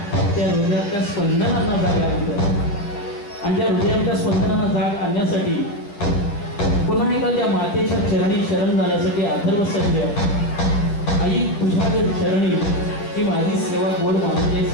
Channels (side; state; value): right; late; 10 ms